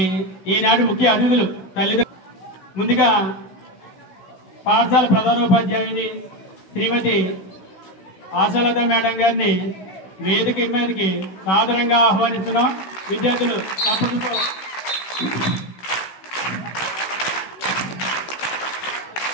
ఈనాటి ముఖ్య అతిథులు తల్లిదండ్రులు ముందుగా పాఠశాల ప్రధానోపాధ్యాయుని శ్రీమతి ఆశాలత మేడం గారిని వేదిక మీదకి సాదరంగా ఆహ్వానిస్తున్నాం. విద్యార్థులు తప్పటితో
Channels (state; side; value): late; right; 16 ms